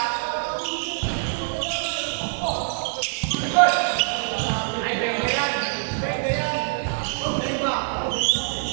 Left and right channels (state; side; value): silent; left; digital silence